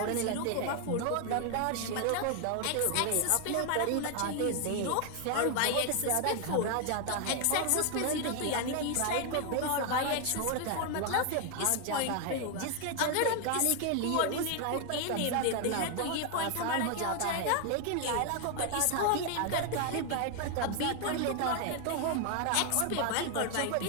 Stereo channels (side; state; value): both; different; correlation 0.00